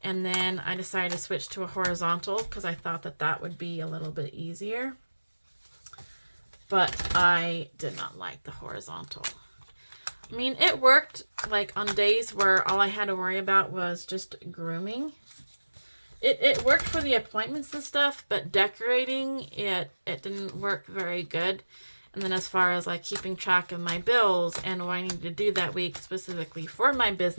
and then I decided to switch to a horizontal because I thought that that would be a little bit easier. But I did not like the horizontal. I mean, it worked like on days where all I had to worry about was just grooming. It worked for the appointments and stuff, but decorating, it didn't work very good. And then as far as like keeping track of my bills and what I needed to do that week specifically for my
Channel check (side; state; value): both; inverted; correlation -1.00